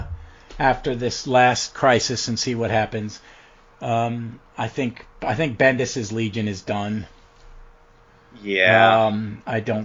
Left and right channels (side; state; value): both; identical; correlation 1.00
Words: after this last crisis and see what happens. I think Bendis's Legion is done. Yeah. I